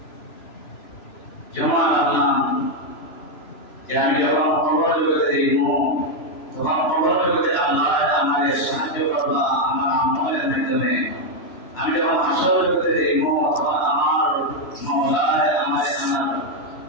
জমা রাখলাম, যে আমি যখন কবর জগতে যাইব তখন কবর জগতে আল্লাহ আমাদের সাহায্য করবা আমার আমলের মাধ্যমে। আমি যখন হাসর জগতে যাইব তখন আমার মওলায় আমার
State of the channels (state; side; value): late; right; 3.0 ms